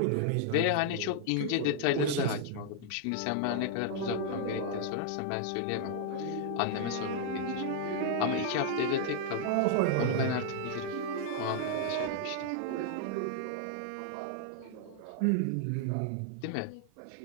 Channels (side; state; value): both; different; correlation 0.00